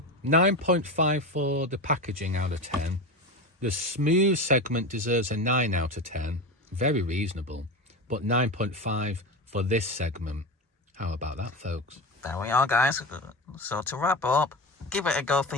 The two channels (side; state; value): both; normal; correlation 0.23